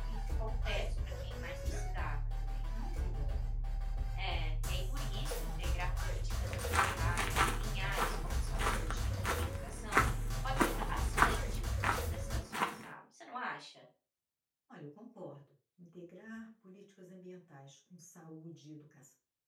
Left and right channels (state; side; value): identical; both; correlation 1.00